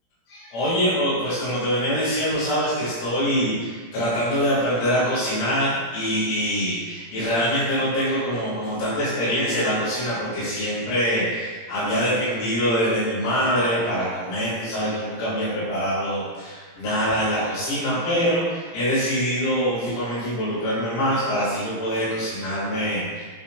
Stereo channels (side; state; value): right; late; 17 ms